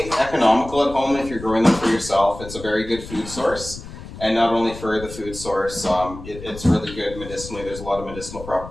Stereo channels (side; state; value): left; noise; rumble, 13 dB below the sound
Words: economical at home if you're growing them for yourself. It's a very good food source. And not only for the food source, it's really good medicinally. There's a lot of medicinal